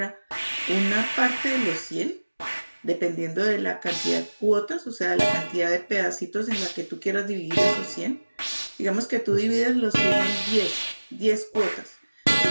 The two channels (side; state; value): both; inverted; correlation -1.00